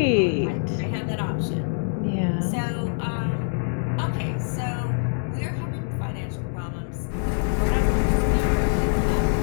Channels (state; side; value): silent; right; digital silence